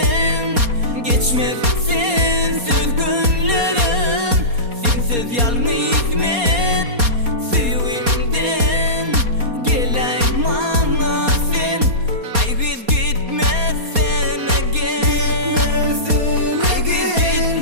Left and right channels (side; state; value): left; late; 4.2 ms